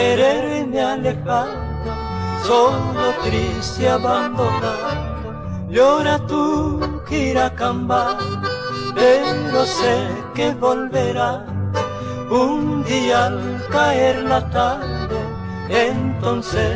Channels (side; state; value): both; identical; correlation 1.00